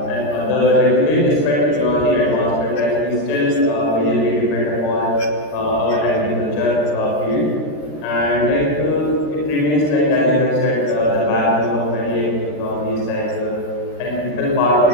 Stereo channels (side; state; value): right; late; 13 ms